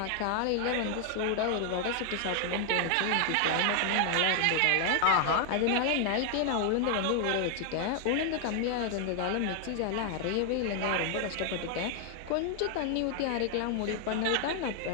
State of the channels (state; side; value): different; both; correlation 0.00